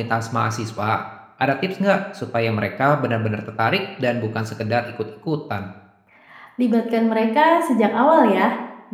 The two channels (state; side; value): identical; both; correlation 1.00